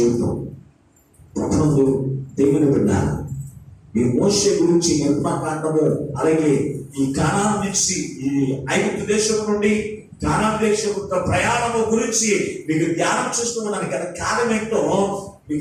ప్రపంచంలో దేవుని విన్నారు. ఈ మోషే గురించి నిర్మాకాండము, అలాగే ఈ కానాను నుంచి ఈ ఐగుప్తు దేశం నుండి కానాను దేశం ప్రయాణము గురించి మీకు ధ్యానం చేస్తూ ఉన్నాను కదా. కారణం ఏంటో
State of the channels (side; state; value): both; identical; correlation 1.00